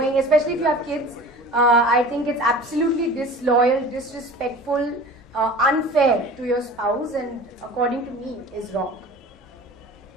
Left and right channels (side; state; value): both; normal; correlation 0.40